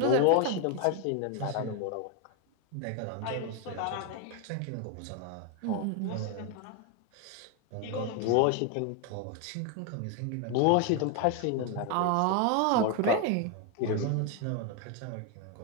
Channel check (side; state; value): both; different; correlation 0.01